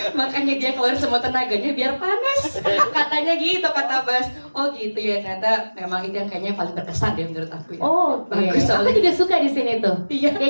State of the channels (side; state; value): both; inverted; correlation -1.00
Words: Makanya dia keluar semua tenaganya biar panas. Katanya gitu kata Bas. Oh gitu ya ternyata memang itu yang kayaknya paling berkesan deh menurut aku ya. Oh, bagus aku soalnya. juga suka di sini tuh. Iya.